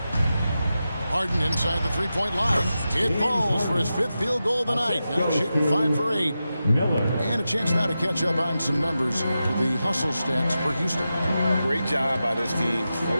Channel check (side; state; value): both; inverted; correlation -0.91